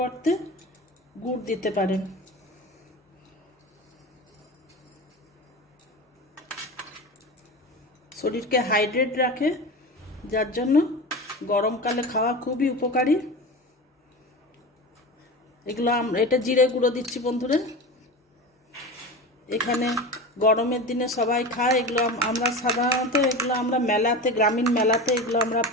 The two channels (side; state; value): both; normal; correlation 0.28